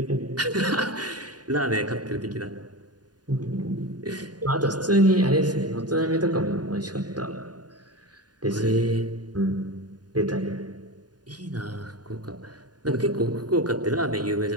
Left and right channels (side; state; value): left; late; 0.69 ms